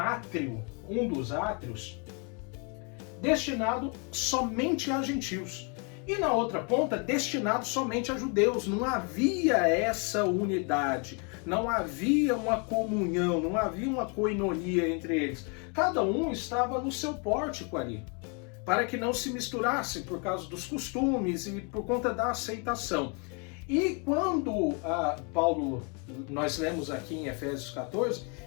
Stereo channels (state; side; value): quieter; right; 35.4 dB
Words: um dos átrios, destinado somente a gentios. E na outra ponta, destinado somente a judeus. Não havia essa unidade, não havia uma comunhão, não havia uma koinonia entre eles. Cada um estava no seu pórtico ali, para que não se misturassem por causa dos costumes e por conta da aceitação. E quando Paulo, nós lemos aqui em Efésios 14,